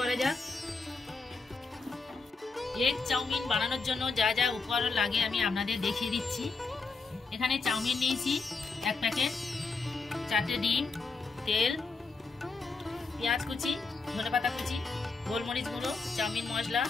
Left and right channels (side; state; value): right; quieter; 4.2 dB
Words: যাক। এগ চাউমিন বানানোর জন্য যা যা উপকরণ লাগে আমি আপনাদের দেখিয়ে দিচ্ছি। এখানে চাউমিন নিয়েছি 1 প্যাকেট, 4টে ডিম, তেল, পেঁয়াজ কুচি, ধনেপাতা কুচি, গোলমরিচ গুঁড়ো, চাউমিন মশলা,